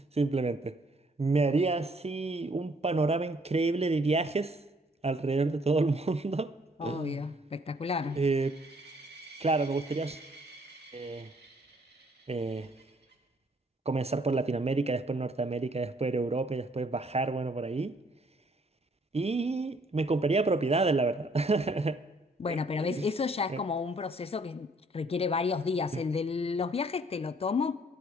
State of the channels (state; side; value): normal; both; correlation 0.64